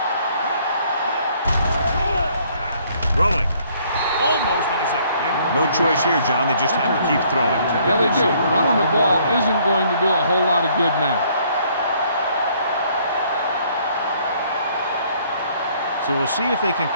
Throwing. Almost intercepted. No choice here, John. They just have to keep throwing. Yeah, they do. Running the ball isn't going to do a whole lot of good now. So we'll see if they can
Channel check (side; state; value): both; inverted; correlation -0.63